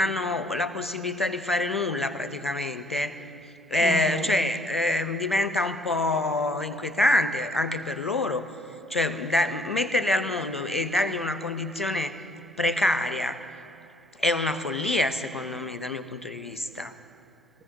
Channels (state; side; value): normal; both; correlation 0.61